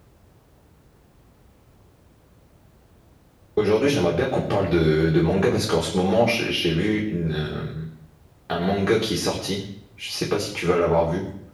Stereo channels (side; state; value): both; identical; correlation 1.00